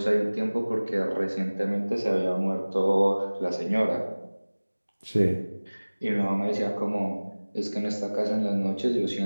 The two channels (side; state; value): both; inverted; correlation -1.00